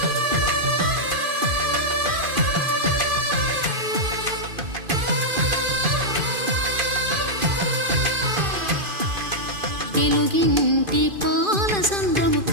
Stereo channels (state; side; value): late; left; 2.5 ms